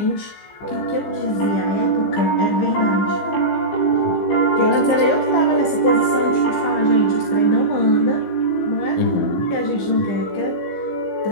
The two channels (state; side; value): late; right; 15 ms